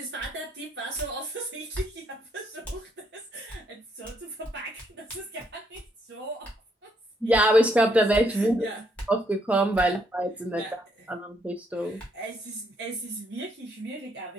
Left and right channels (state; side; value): normal; both; correlation 0.72